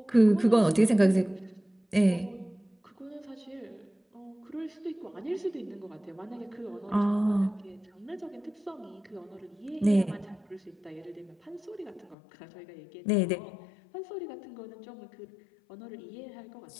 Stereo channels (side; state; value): right; drops out; at 12.2 s